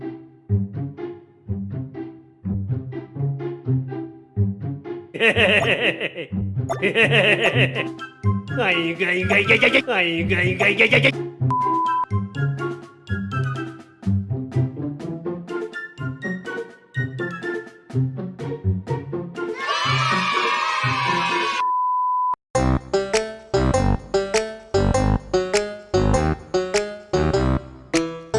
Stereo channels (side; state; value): both; identical; correlation 1.00